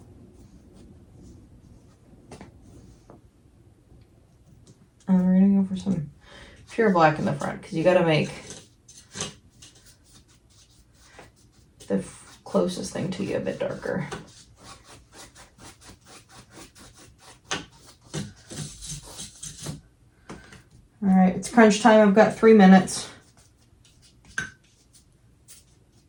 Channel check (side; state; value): both; identical; correlation 1.00